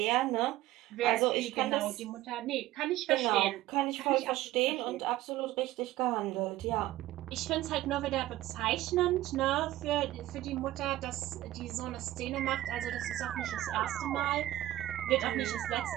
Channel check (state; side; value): quieter; left; 15.4 dB